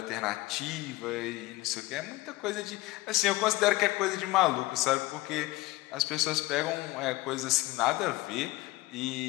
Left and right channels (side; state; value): right; quieter; 19.8 dB